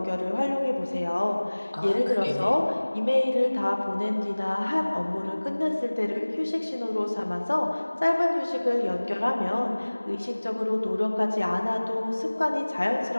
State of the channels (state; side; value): inverted; both; correlation -1.00